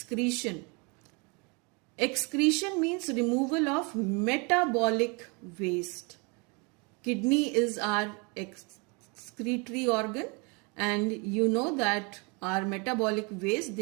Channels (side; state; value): left; quieter; 31.0 dB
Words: Excretion means removal of metabolic waste. Kidney is our excretory organ, and you know that our metabolic waste,